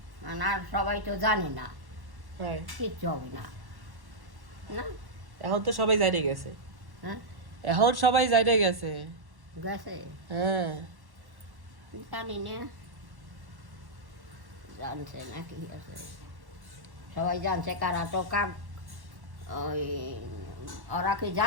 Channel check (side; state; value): left; late; 1.1 ms